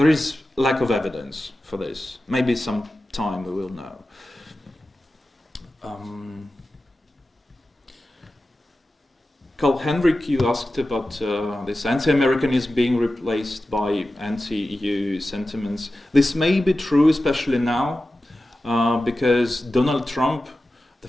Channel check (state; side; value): normal; both; correlation 0.94